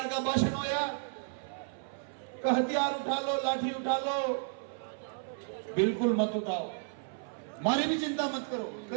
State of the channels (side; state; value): left; silent; 56 dB below the other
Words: का भाषण होया, हथियार उठा लो, लाठी उठा लो, बिल्कुल मत उठाओ, मारी भी चिंता मत करो।